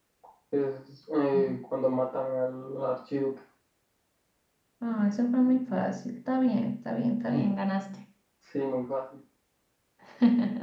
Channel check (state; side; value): identical; both; correlation 1.00